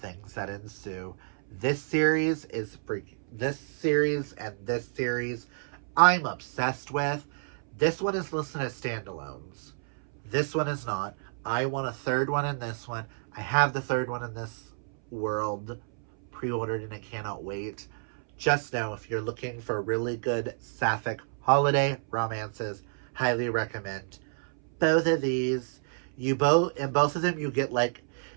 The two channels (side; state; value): left; silent; 58 dB below the other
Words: that ensue. This series is freaking. This series I'm obsessed with. This one is listed as standalones. This one is not. I want a third one in this one. I have the third one in this World pre-ordered and I cannot wait. Just know if you're looking for really good sapphic holiday romances, highly recommend both of these. In both of them you get, like,